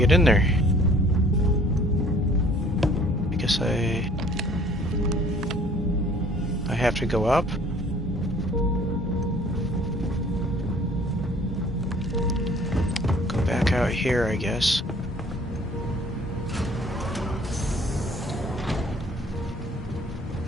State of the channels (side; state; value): both; normal; correlation 0.55